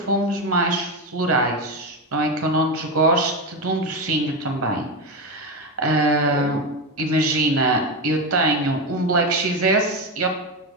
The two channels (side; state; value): both; normal; correlation 0.14